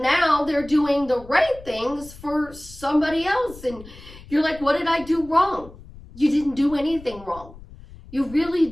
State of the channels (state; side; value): noise; left; rumble, 19 dB below the sound